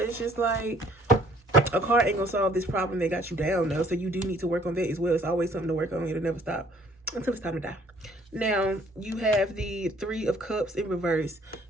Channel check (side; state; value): both; normal; correlation 0.59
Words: it's just like, a car ain't going to solve this problem that got you down, though. So you do need to work on that as well. It's always something to work on. It'll never stop until it's time to die. Now, you have the 3 of cups in reverse.